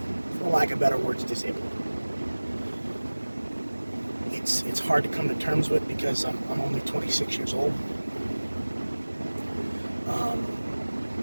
for lack of better words, disabled. It's hard to come to terms with because I'm only 26 years old,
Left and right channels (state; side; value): inverted; both; correlation -1.00